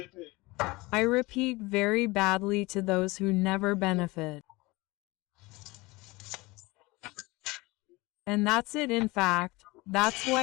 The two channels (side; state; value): right; quieter; 22.6 dB